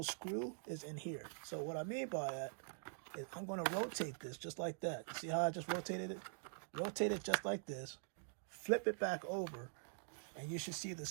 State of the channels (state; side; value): silent; left; digital silence